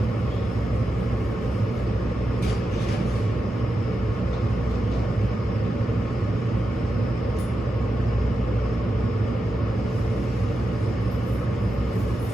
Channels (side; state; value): both; normal; correlation 0.89